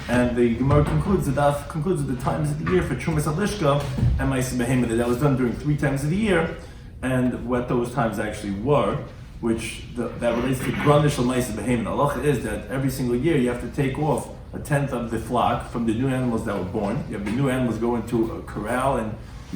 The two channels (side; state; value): both; identical; correlation 1.00